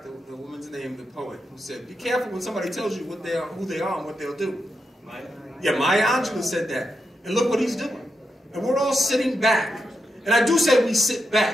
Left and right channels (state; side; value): normal; both; correlation 0.86